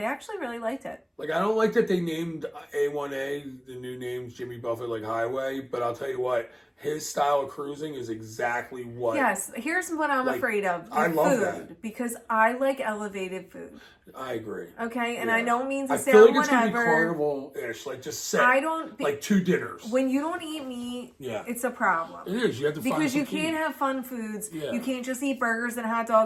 actually really liked it. Like, I don't like that they named A1A, the new name's Jimmy Buffett, like Highway. But I'll tell you what, his style of cruising is exactly what... Yes, here's what I'm afraid of. I love that. Because I like elevated food. I agree. Okay, and I don't mean to say I feel like it's going to be Carnival-ish, like just set, like 2 dinners. When you don't eat meat, it's a problem. It is, you have to find because you can't have fun foods. Yeah. You can't just eat burgers and hot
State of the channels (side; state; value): both; identical; correlation 1.00